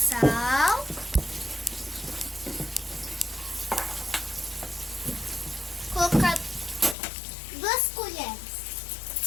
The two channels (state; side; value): drops out; right; at 7.0 s